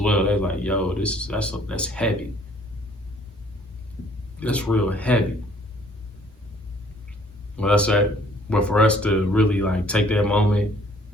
They're like, yo, that's heavy. That's real heavy. Well, that's that. But for us to really like take that moment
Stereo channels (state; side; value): normal; both; correlation 0.59